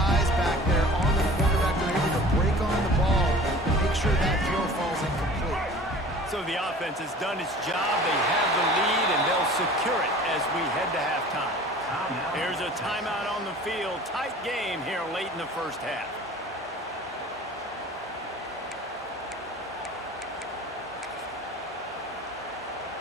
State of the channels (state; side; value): normal; both; correlation 0.44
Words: back there on the quarterback. They're able to break on the ball and make sure that throw falls incomplete. So the offense has done its job. They have the lead, and they'll secure it as we head to halftime. Here's a timeout on the field. Tight game here late in the first half.